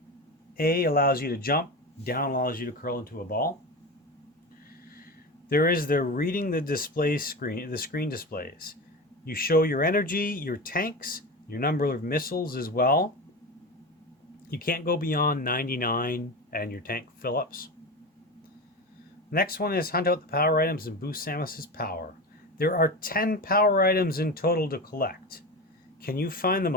A allows you to jump. Down allows you to curl into a ball. There is the reading the display screen. The screen displays. You show your energy, your tanks, your number of missiles as well. You can't go beyond 99 and your tank fill-ups. Next one is hunt out the power items and boost Samus's power. There are 10 power items in total to collect. Can you find them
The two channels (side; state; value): both; normal; correlation 0.25